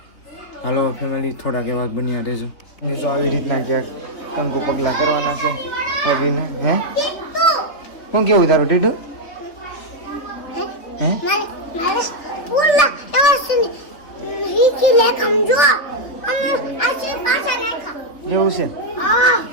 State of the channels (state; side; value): late; right; 3.2 ms